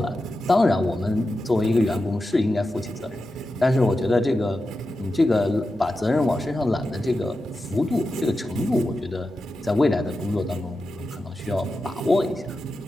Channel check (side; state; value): both; normal; correlation 0.91